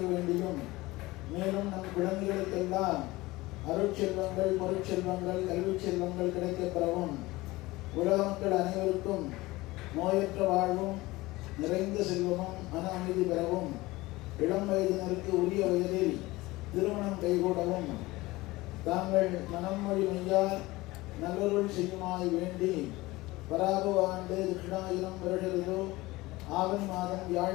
வேண்டியும் மேலும் நம் குழந்தைகளுக்கெல்லாம் அருட்செல்வங்கள் பொருட்செல்வங்கள் கல்வி செல்வங்கள் கிடைக்கப்பெறவும் உலக மக்கள் அனைவருக்கும் நோயற்ற வாழ்வும் நிறைந்த செல்வமும் மன அமைதி பெறவும் இளம் வயதினருக்கு உரிய வயதில் திருமணம் கைகூடவும் தாங்கள் மனம் மொழி மெய்யார் நல்லொருள் செய்யுமாய் வேண்டி பராபவ ஆண்டு தட்சிணாயிரம் வருடங்களோ ஆவணி மாதம்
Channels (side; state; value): right; quieter; 20.1 dB